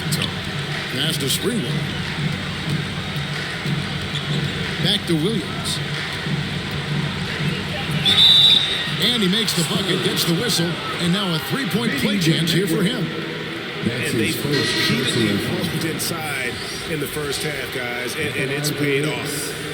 the tone. Pass to Sprewell. Back to Williams. And he makes the bucket, gets the whistle, and now a 3-point play chance here for him. And they've repeatedly rolled inside in the first half, guys, and it's paid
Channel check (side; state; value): both; identical; correlation 1.00